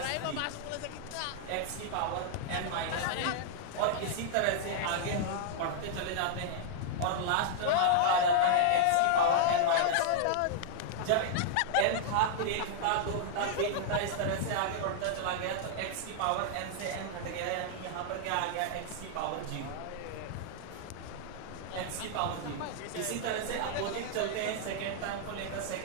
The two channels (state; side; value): different; both; correlation -0.01